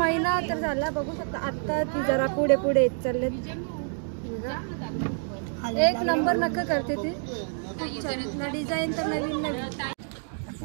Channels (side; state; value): left; silent; 58 dB below the other